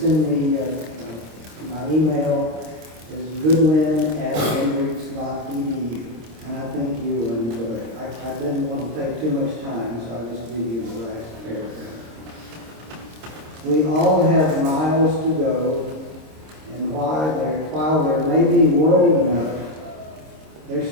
send me my email is goodwin@hendricks.edu, and I think you will enjoy it. I didn't want to take too much time, so I'll just give you the last paragraph. We all have miles to go, and while there may be world enough, there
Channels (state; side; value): late; left; 26 ms